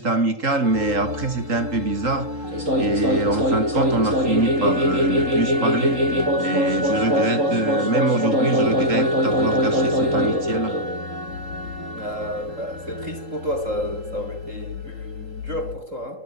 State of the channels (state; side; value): late; left; 3.8 ms